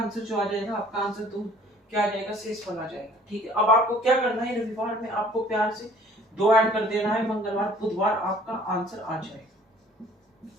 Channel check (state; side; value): normal; both; correlation 0.54